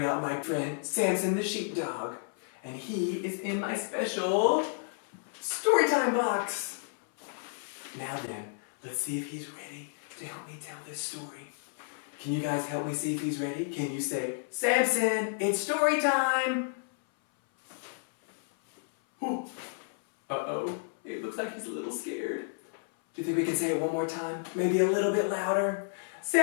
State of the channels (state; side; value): silent; right; 57 dB below the other